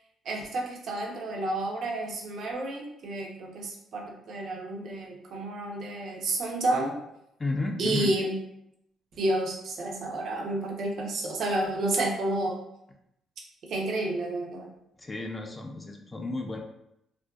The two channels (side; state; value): both; normal; correlation 0.71